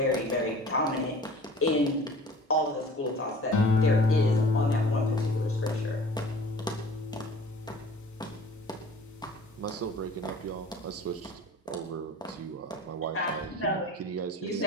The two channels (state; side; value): normal; both; correlation 0.46